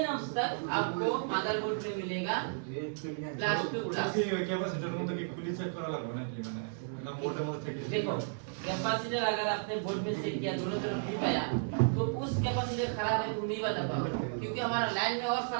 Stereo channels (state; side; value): silent; left; digital silence